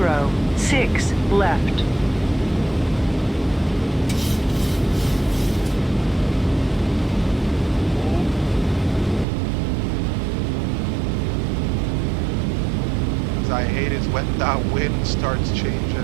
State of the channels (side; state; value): left; drops out; at 9.2 s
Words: left. As I hate is when that wind starts